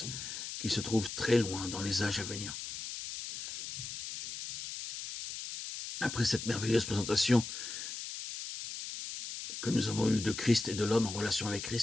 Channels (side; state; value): left; noise; hiss, 8 dB below the sound